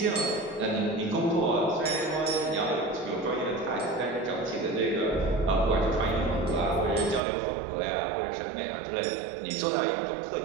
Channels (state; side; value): drops out; left; at 7.2 s